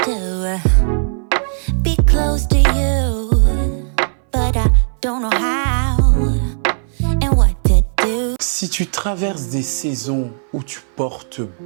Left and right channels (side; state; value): left; silent; 61 dB below the other